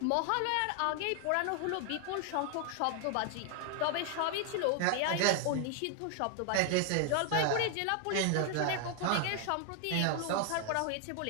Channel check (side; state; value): both; different; correlation 0.00